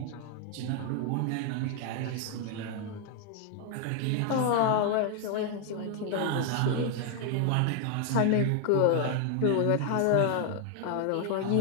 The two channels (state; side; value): different; both; correlation 0.00